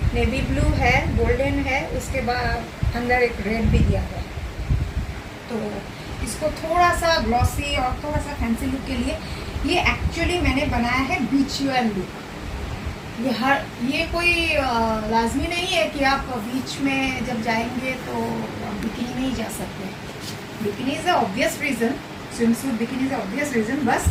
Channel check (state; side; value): identical; both; correlation 1.00